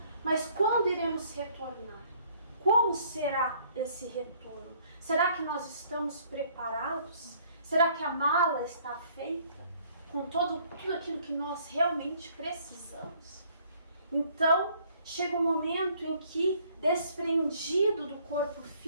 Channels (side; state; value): both; inverted; correlation -0.61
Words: mas quando iremos retornar? Como será esse retorno? Será que nós estamos preparados? Será que a mala está feita com tudo aquilo que nós realmente precisamos? Então, chega um momento em que, desprendido do corpo